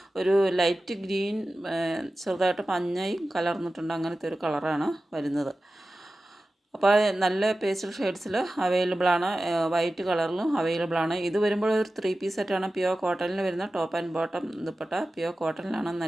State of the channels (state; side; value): normal; both; correlation 0.95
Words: ഒരു ലൈറ്റ് ഗ്രീൻ, ചെറുതായിട്ട് മഞ്ഞയും കലർന്നിട്ടുണ്ട്. അങ്ങനത്തെ ഒരു കളറാണ് വരുന്നത്. അപ്പോൾ നല്ല പേസ്റ്റൽ ഷെയ്ഡ്സിൽ അവൈലബിൾ ആണ്. വൈറ്റ് കളറിലും അവൈലബിൾ ആണ്. ഇത് വരുമ്പോൾ ഒരു 3 പീസ് സെറ്റാണ്. പ്യുവർ കോട്ടണിൽ വരുന്ന top and bottom dupatta pure കോട്ടണിലാണ്.